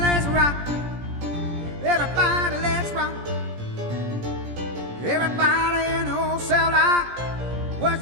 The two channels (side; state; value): left; late; 17 ms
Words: rock. Everybody, let's rock. Everybody in the old cell block was